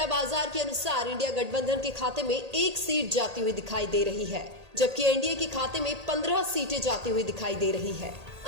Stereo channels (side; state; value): left; late; 1.8 ms